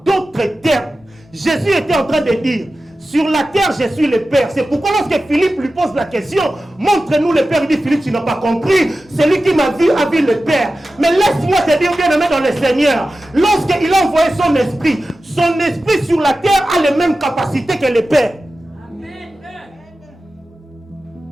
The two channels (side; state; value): both; normal; correlation 0.94